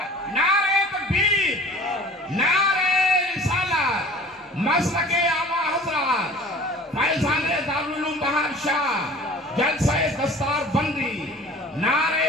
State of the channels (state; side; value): normal; both; correlation 0.45